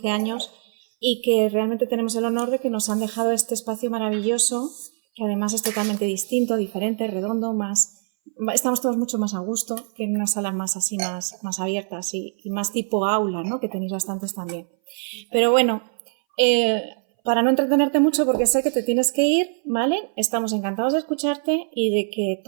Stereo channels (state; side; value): silent; left; 60 dB below the other